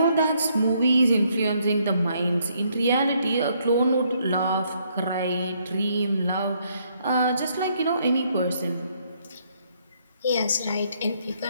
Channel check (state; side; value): inverted; both; correlation -0.70